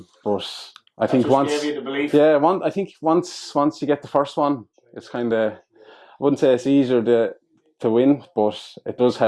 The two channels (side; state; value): both; identical; correlation 1.00